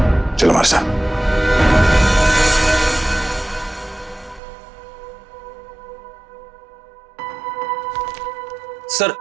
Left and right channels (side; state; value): left; drops out; at 4.4 s